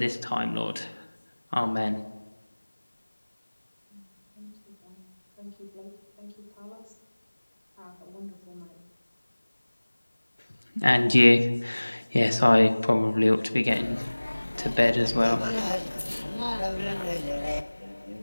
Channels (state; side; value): inverted; both; correlation -1.00